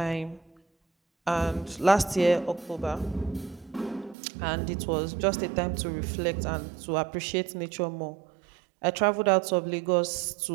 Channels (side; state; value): left; drops out; at 4.2 s